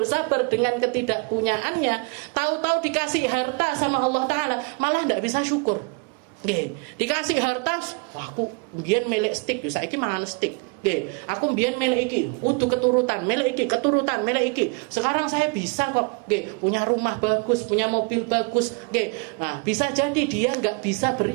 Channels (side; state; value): left; quieter; 31.9 dB